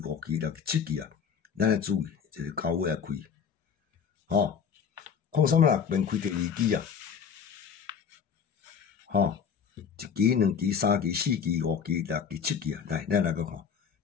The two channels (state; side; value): quieter; right; 6.9 dB